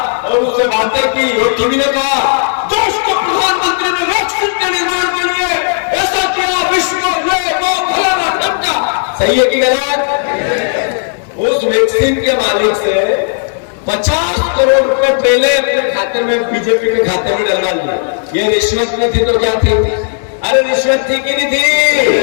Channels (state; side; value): silent; right; digital silence